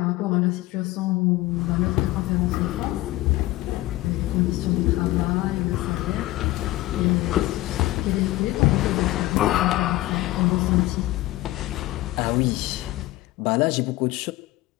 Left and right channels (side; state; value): right; quieter; 17.6 dB